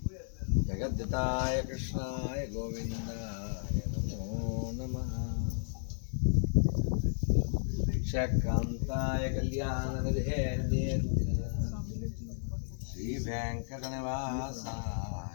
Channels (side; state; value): right; silent; digital silence